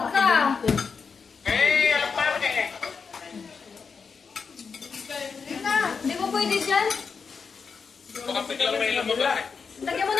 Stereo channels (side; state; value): right; quieter; 5.5 dB